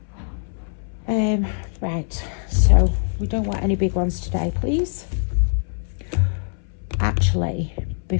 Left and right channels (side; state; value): right; silent; 64 dB below the other